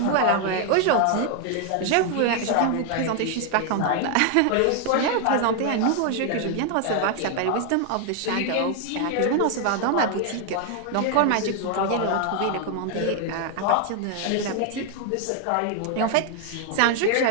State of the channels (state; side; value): different; both; correlation 0.00